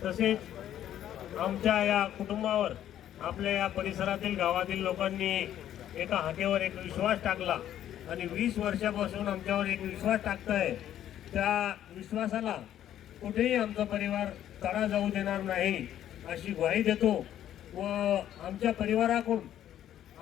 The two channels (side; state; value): right; quieter; 11.3 dB